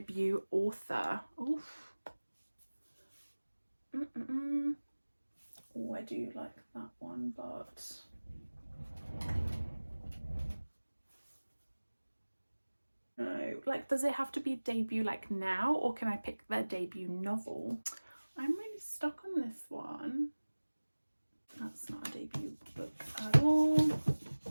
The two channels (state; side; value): inverted; both; correlation -1.00